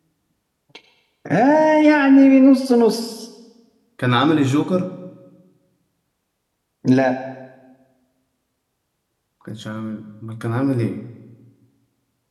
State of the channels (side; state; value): both; identical; correlation 1.00